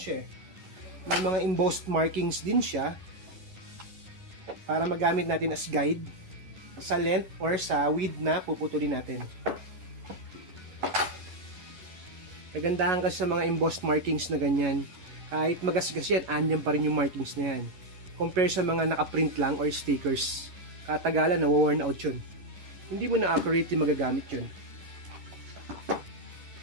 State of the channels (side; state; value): left; late; 11 ms